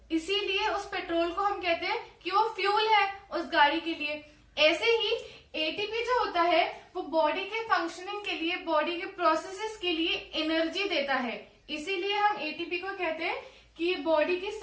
इसीलिए उस पेट्रोल को हम कहते हैं कि वो फ्यूल है उस गाड़ी के लिए। ऐसे ही ATP जो होता है वो बॉडी के फंक्शनिंग के लिए, बॉडी के प्रोसेसेस के लिए एनर्जी देता है, इसीलिए हम ATP को कहते हैं कि बॉडी की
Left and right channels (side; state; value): both; identical; correlation 1.00